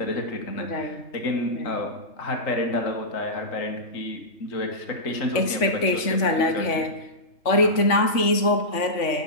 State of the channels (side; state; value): right; late; 3.5 ms